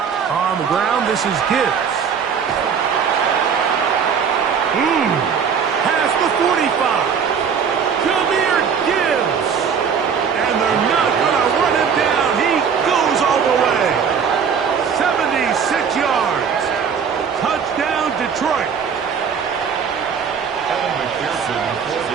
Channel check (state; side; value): quieter; left; 6.8 dB